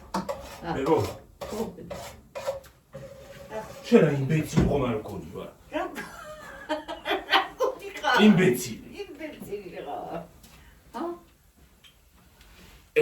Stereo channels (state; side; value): identical; both; correlation 1.00